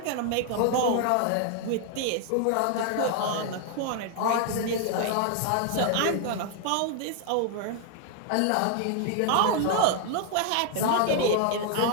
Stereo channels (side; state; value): both; different; correlation 0.00